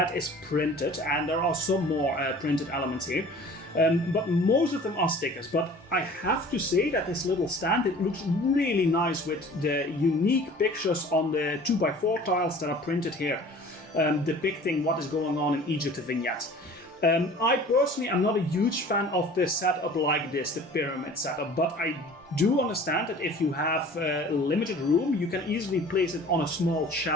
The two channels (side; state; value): both; normal; correlation 0.46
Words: is printed, and there are some more printed elements here. But most of them are stickers. But I have to say that this little stand, it looks really nice with the unique pictures on the 2x4 tiles that are printed here, depicting what is going on in Egypt, the vignette. I personally am not a huge fan of the setup like this, the pyramid setup, but I do understand that if you have limited room, you can easily place it on a small